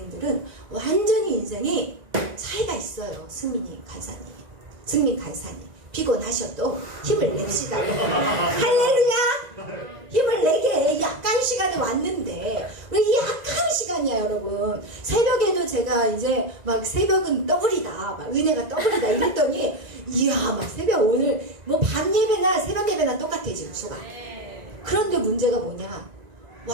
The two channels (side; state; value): left; late; 1.9 ms